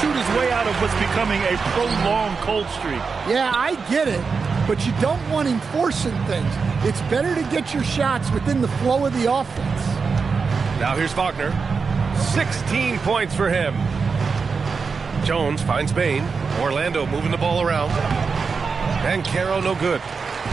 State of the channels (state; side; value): quieter; left; 5.1 dB